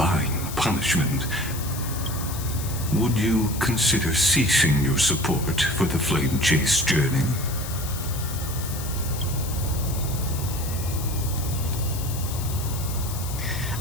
punishment, would you consider ceasing your support for the Flame Chase journey?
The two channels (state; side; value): noise; left; hiss, 10 dB below the sound